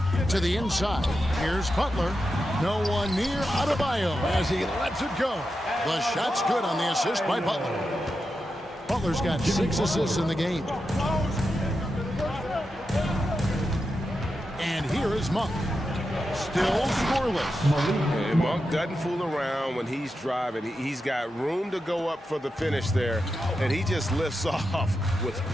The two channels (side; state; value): both; normal; correlation 0.89